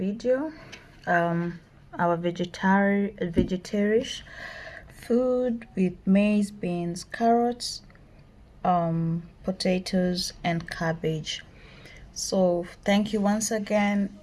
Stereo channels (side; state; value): both; identical; correlation 1.00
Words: Our vegetarian food with maize, beans, carrots, potatoes, and cabbage. So thank you once again,